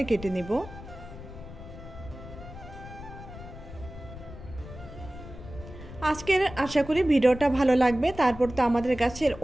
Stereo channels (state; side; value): noise; left; rumble, 14 dB below the sound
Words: কেটে নিব। আজকের আশা করি ভিডিওটা ভালো লাগবে। তারপর তো আমাদের গাছের